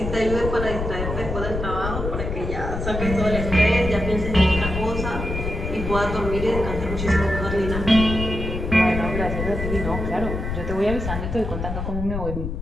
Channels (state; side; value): noise; left; rumble, 4 dB below the sound